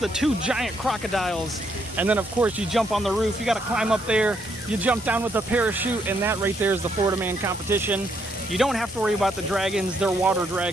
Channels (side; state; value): both; normal; correlation 0.74